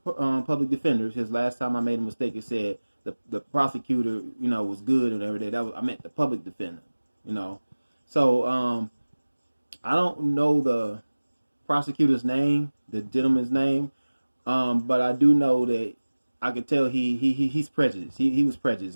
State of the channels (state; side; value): inverted; both; correlation -1.00